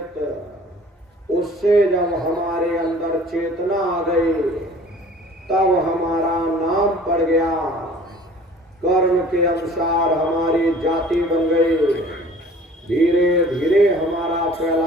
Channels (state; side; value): normal; both; correlation 0.48